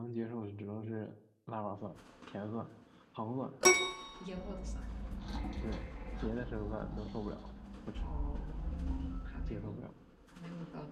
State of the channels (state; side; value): identical; both; correlation 1.00